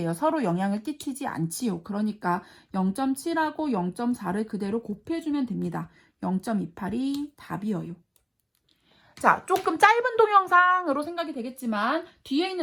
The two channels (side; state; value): both; identical; correlation 1.00